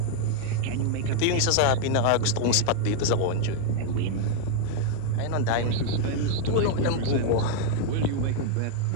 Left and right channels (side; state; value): both; different; correlation 0.00